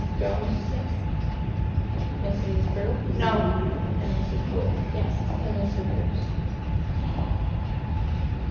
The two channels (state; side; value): identical; both; correlation 1.00